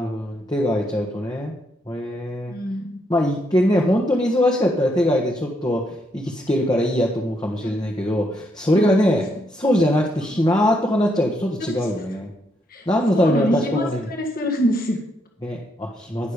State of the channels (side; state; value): both; normal; correlation 0.76